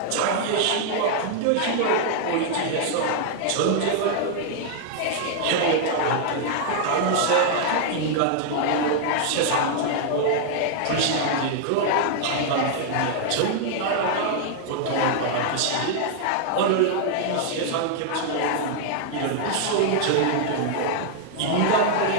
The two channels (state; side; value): different; both; correlation -0.01